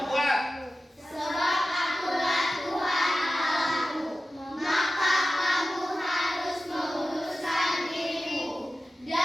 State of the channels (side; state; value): both; normal; correlation 0.94